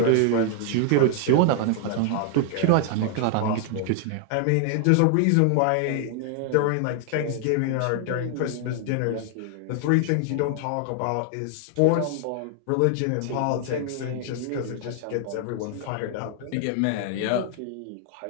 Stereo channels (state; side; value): different; both; correlation 0.00